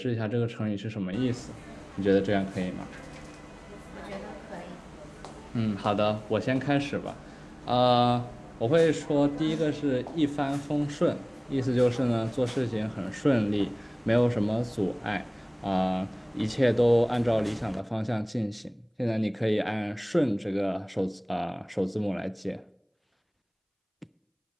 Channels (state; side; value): identical; both; correlation 1.00